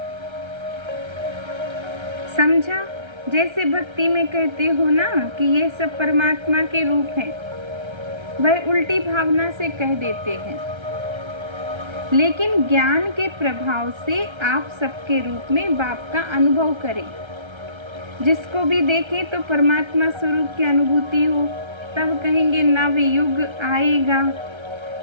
समझा? जैसे भक्ति में कहते हो ना कि ये सब परमात्मा के रूप हैं, वह उल्टी भावना से कह देते हैं, लेकिन ज्ञान के प्रभाव से आप सबके रूप में बाप का अनुभव करें। जिसको भी देखें तो परमात्मा स्वरूप की अनुभूति हो, तब कहेंगे नव युग आएगा।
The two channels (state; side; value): late; left; 1.3 ms